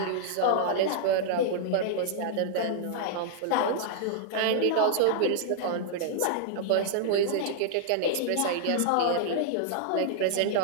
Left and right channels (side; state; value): both; different; correlation -0.01